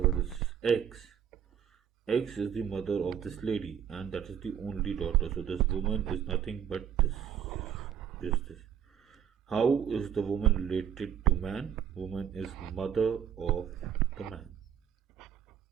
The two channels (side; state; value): left; quieter; 8.9 dB